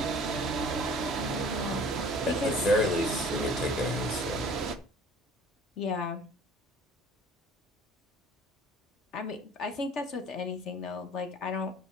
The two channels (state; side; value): normal; both; correlation 0.49